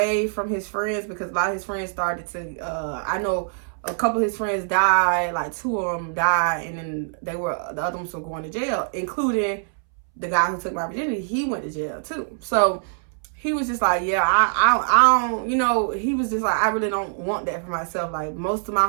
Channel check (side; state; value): left; silent; 63 dB below the other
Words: from his friends, because a lot of his friends started to, I know a couple of his friends died, like 2 of them died, and then the other ones were going to jail, including the guy who took my virginity. He went to jail too. So he was just like, yeah, I don't, he was just like, I really don't want that for myself. Like, most of my